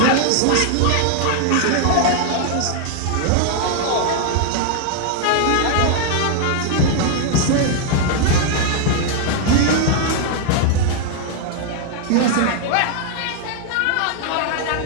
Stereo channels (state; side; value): different; both; correlation 0.00